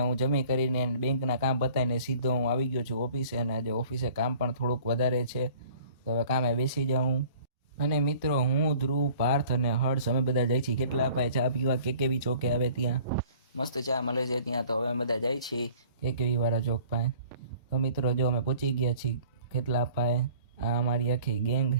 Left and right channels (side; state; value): both; inverted; correlation -0.50